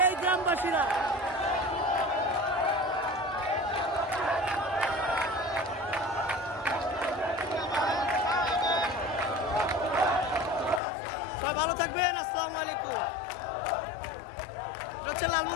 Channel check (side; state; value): right; drops out; at 10.8 s